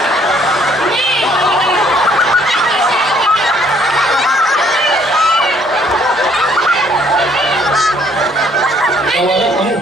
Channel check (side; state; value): both; normal; correlation 0.63